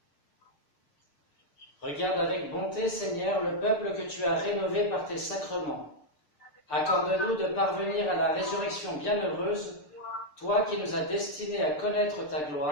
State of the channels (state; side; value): late; right; 6.8 ms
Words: Regarde avec bonté, Seigneur, le peuple que tu as rénové par tes sacrements. Accorde-nous de parvenir à la résurrection bienheureuse, toi qui nous as destinés à connaître ta